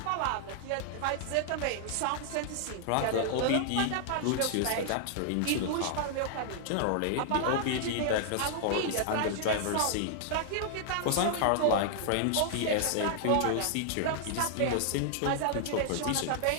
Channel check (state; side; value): different; both; correlation -0.01